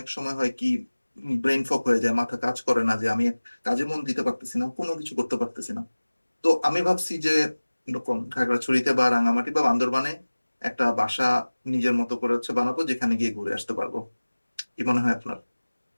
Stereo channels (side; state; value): both; inverted; correlation -1.00